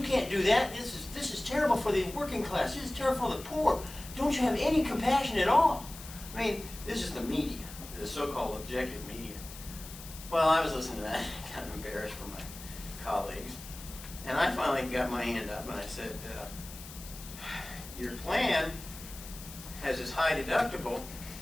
do that. This is terrible for the working class. This is terrible for the poor. Don't you have any compassion at all? I mean, this is the media, the so-called objective media. Well, I was listening to that, kind of embarrassed for my colleagues. And I finally got my hand up and I said, your plan has this high deductible,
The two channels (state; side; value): noise; left; hiss, 14 dB below the sound